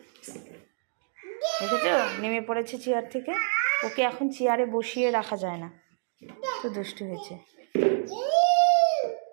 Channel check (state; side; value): silent; left; digital silence